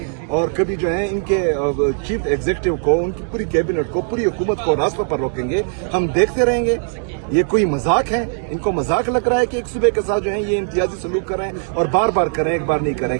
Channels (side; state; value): left; silent; digital silence